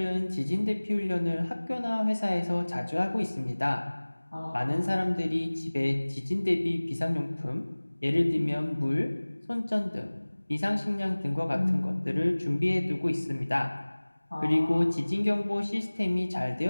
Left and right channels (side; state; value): both; inverted; correlation -1.00